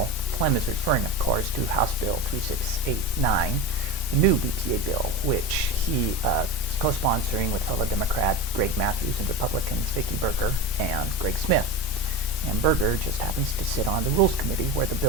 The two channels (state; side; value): normal; both; correlation 0.25